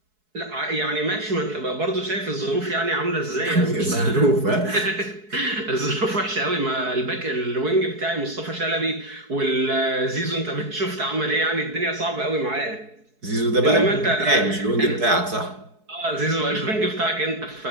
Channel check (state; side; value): late; left; 4.7 ms